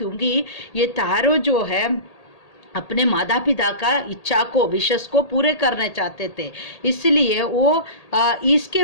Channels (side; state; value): right; late; 1.8 ms